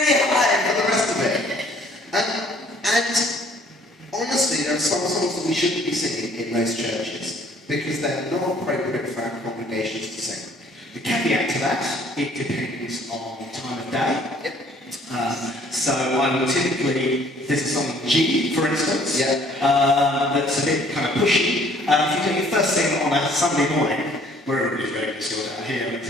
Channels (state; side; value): normal; both; correlation 0.58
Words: high for the rest of it. And honestly, there are some songs that we shouldn't be singing in most churches because they're not appropriate for our congregations to sing. The caveat to that, it depends on time of day. Yep. So I will typically, there's a song G, for instance, that's a bit kind of pushy. If you do your first thing on a Sunday morning, where everybody's ready to sort out here,